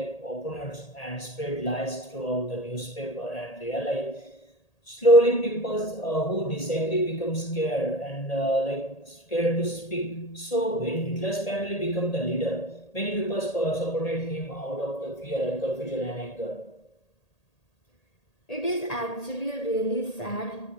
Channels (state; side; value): late; right; 1.8 ms